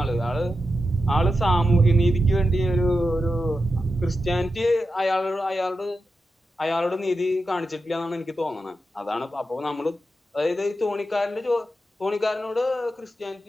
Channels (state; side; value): normal; both; correlation 0.89